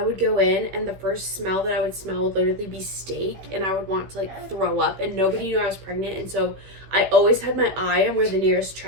would go in and the first smell that I would smell would literally be steak, and I would want to like throw up, and nobody knew I was pregnant. And so I always had my eye on where the nearest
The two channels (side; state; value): left; late; 16 ms